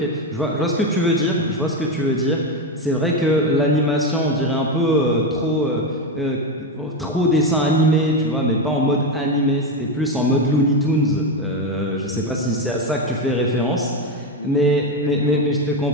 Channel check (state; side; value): normal; both; correlation 0.12